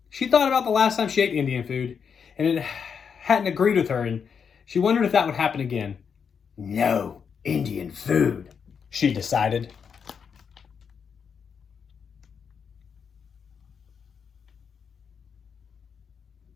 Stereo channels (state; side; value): quieter; right; 6.6 dB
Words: she thought about the last time she ate Indian food, and it hadn't agreed with her, and she wondered if that would happen again. "No Indian food," she decided.